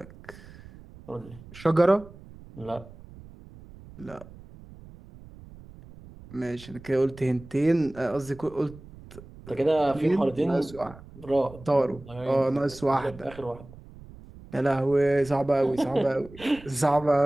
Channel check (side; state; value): right; noise; rumble, 19 dB below the sound